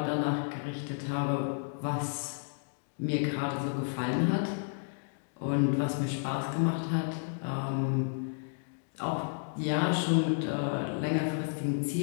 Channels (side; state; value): right; silent; digital silence